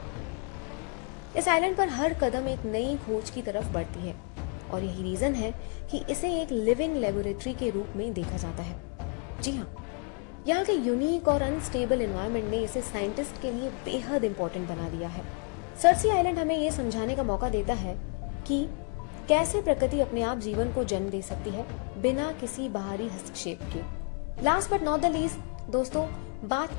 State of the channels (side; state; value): right; quieter; 37.2 dB